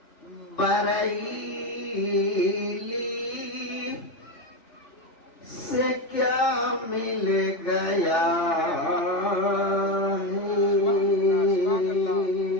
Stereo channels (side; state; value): right; late; 3.4 ms